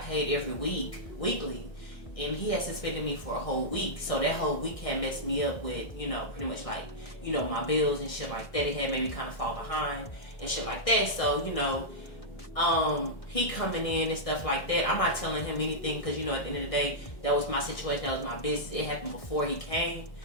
paid every weekly, and he had suspended me for a whole week. So that whole week had messed me up with, pretty much my bills and shit like that. It had made me kind of fall behind and shit like that. So, he coming in and stuff like that. I'm not telling him anything because, at the end of the day, that was my situation. That was my business. It happened before he came.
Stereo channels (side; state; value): right; late; 1.6 ms